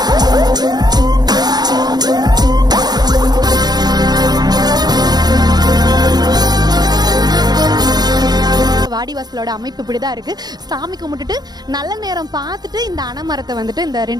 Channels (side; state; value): left; late; 0.19 ms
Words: வாடிவாசலோட அமைப்பு இப்படிதான் இருக்கு. சாமி கும்பிட்டுட்டு நல்ல நேரம் பார்த்துட்டு இந்த அணமரத்தை வந்துட்டு இந்த